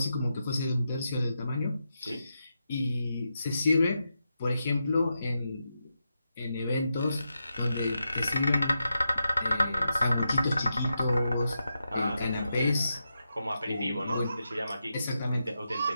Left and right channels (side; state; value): both; inverted; correlation -0.86